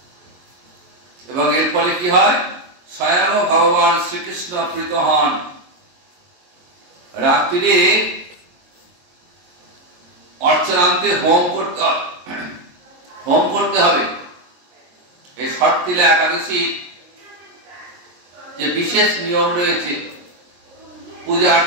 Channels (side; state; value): left; late; 22 ms